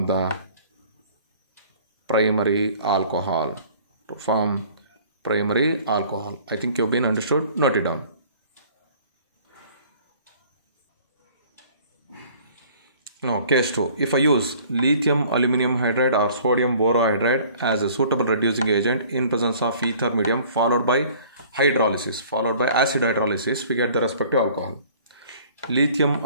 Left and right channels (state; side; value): inverted; both; correlation -0.52